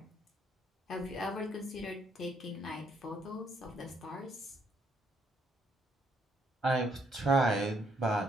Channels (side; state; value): both; normal; correlation 0.71